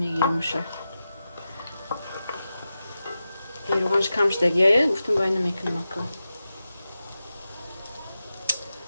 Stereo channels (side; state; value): both; inverted; correlation -0.92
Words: روغانش کم شدگی یا گفتم باید نمیکنم اکا